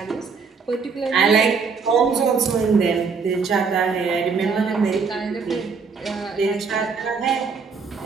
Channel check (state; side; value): quieter; left; 5.2 dB